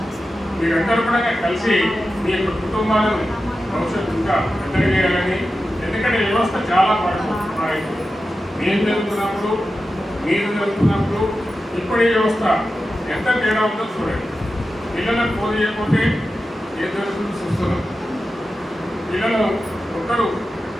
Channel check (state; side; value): normal; both; correlation 0.92